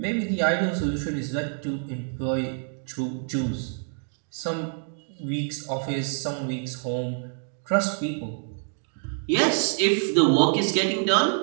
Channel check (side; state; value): left; silent; 56 dB below the other